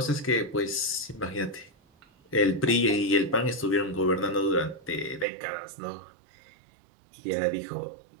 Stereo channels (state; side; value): drops out; left; at 5.2 s